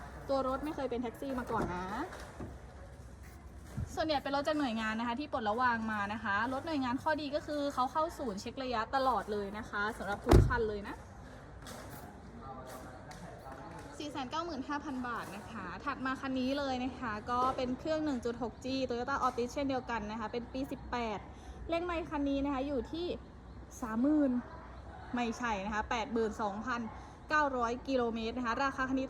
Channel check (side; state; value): both; identical; correlation 1.00